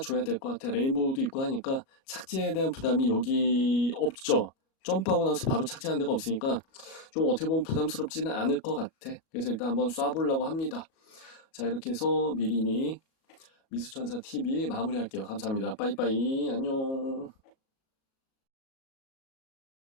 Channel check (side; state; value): right; late; 37 ms